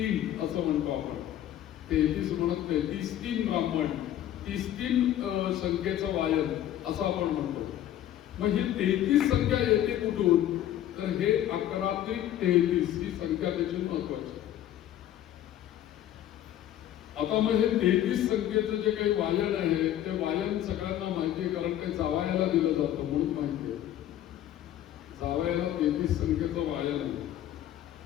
असं म्हणतो आपण. 33 म्हणत नाही, 33 ब्राह्मण, 33 संख्येचं वायन असं आपण म्हणतो. मग ही 33 संख्या येते कुठून, तर हे 11 ते 33 ही संख्या त्याची महत्वाची. आता मग हे 33 संख्येचं जे काही वायन आहे ते वायन सगळ्यांना माहिती आहे, कारण ते जावयाला दिलं जातं म्हणून माहिती आहे. जावयाला 33 संख्येचं वायन आहे.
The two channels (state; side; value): quieter; right; 11.9 dB